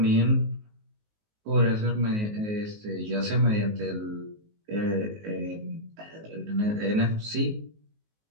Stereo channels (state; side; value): late; left; 19 ms